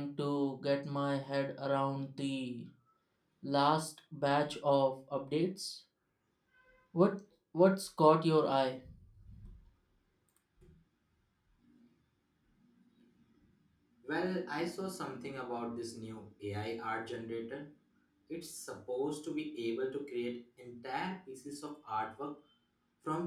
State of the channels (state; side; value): identical; both; correlation 1.00